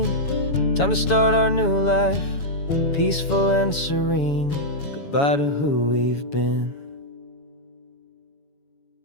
Time to start our new life, peaceful and serene. Goodbye to who we've been.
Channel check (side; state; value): right; late; 7.1 ms